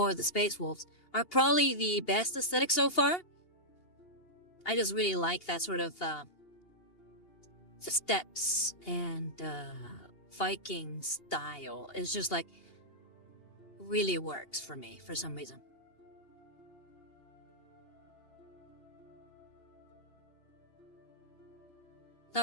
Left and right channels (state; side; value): late; right; 2.8 ms